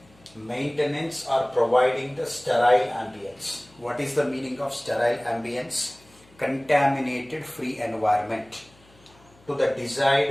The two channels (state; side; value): noise; left; hum, 28 dB below the sound